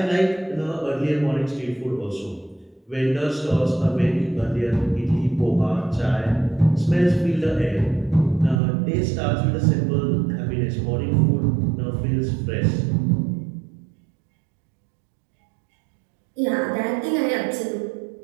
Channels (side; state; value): left; drops out; at 8.6 s